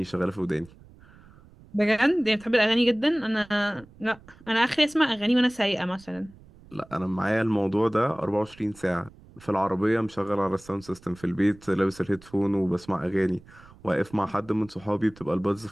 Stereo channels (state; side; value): noise; right; rumble, 24 dB below the sound